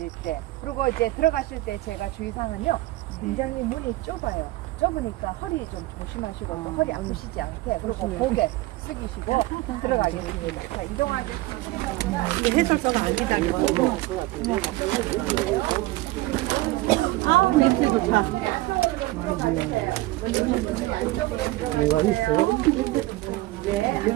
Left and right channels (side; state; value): left; quieter; 18.7 dB